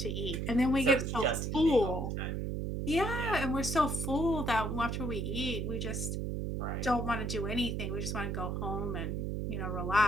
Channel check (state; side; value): noise; right; hum, 2 dB below the sound